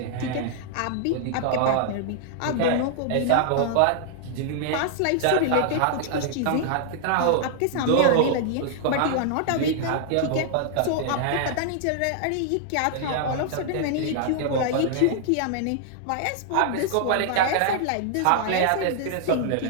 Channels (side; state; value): both; different; correlation -0.01